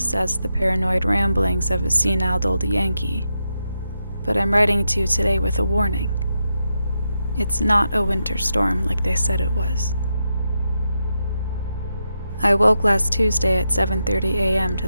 as the paranoid ramblings of a senile old Yankee, but I'm writing to you today with a warning. It's not a winter storm like they said it was. I woke last Tuesday at 7:30 a.m. to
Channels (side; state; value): both; inverted; correlation -0.85